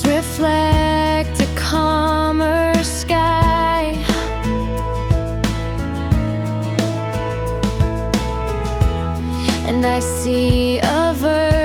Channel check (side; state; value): both; identical; correlation 1.00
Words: reflect a calmer sky. And I see a